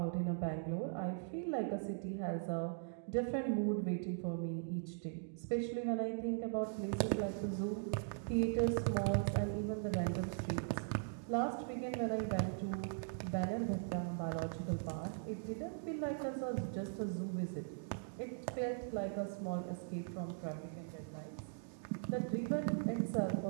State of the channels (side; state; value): left; silent; digital silence